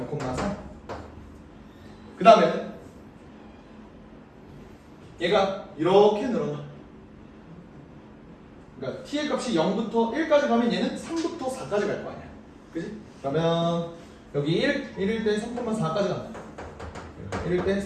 0,3. 그 다음에는 얘가 이렇게 늘어나. 그러니까 T의 값이 0부터 1까지 가면 얘는 3부터 4까지 갈 거 아니야. 그치? 그러면 여기 1일 때 3,4까지 간다. 1일 때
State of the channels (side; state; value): both; identical; correlation 1.00